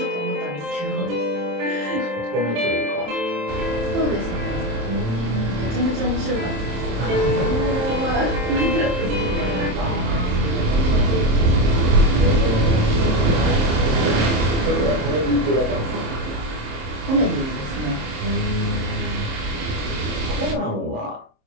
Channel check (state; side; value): late; left; 27 ms